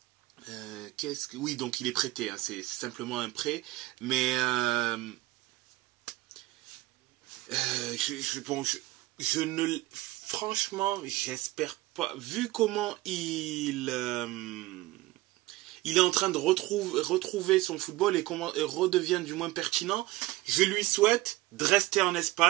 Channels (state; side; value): quieter; left; 18.5 dB